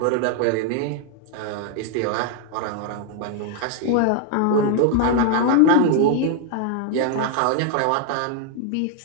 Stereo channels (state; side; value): different; both; correlation 0.00